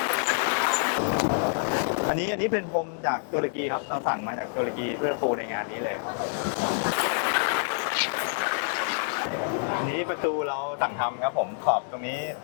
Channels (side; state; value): right; silent; digital silence